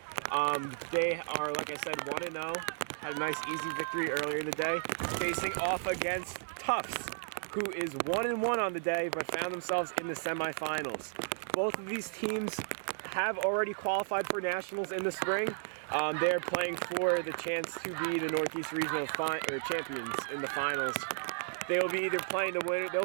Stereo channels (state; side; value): silent; left; digital silence